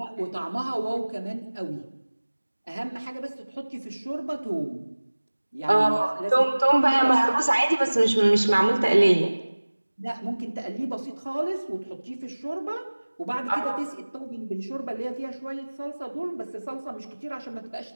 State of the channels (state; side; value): inverted; both; correlation -1.00